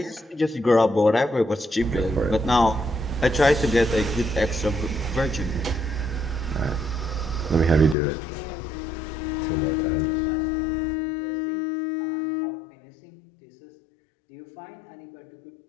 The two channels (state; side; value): drops out; right; at 8.0 s